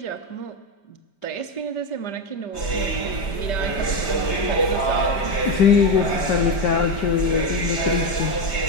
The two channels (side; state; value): right; late; 5.1 ms